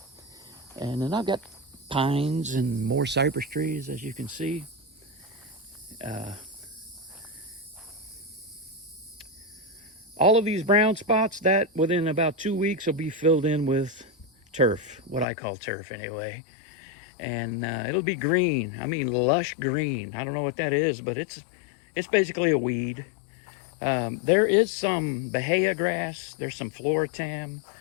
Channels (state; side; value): drops out; right; at 15.2 s